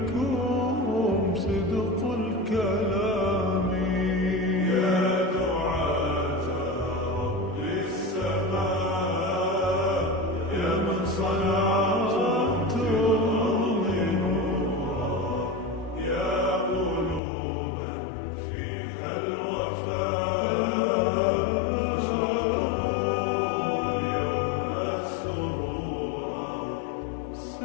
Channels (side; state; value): right; drops out; at 17.2 s